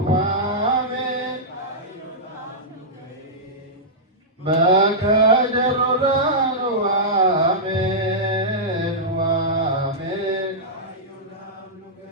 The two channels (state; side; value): normal; both; correlation -0.11